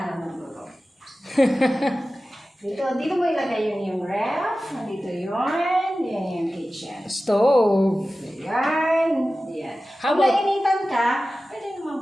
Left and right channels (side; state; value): both; normal; correlation 0.95